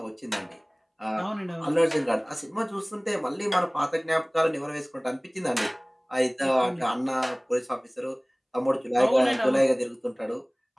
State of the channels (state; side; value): identical; both; correlation 1.00